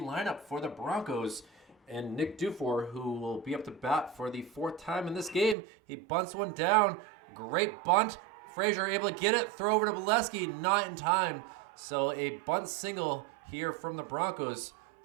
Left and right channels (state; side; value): drops out; left; at 5.6 s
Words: for the Broncos, and Nick Dufour, who will be up to bat for the 4th time in this game. He bunts one down. Great bunt. Frazier able to get it, throw over to Bolesky, not in time. So a bunt single here from the Broncos